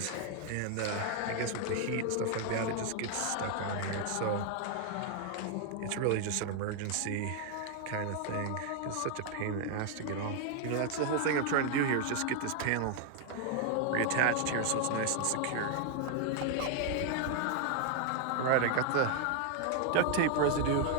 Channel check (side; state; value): both; different; correlation 0.00